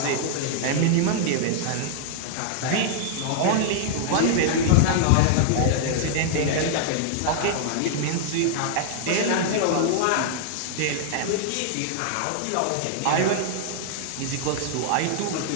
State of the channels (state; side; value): different; both; correlation -0.01